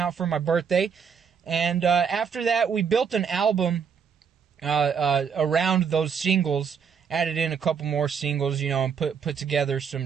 for my birthday. And, after that, we built an album, around those singles, added in a couple more singles, you know, and put together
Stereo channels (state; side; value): quieter; left; 6.8 dB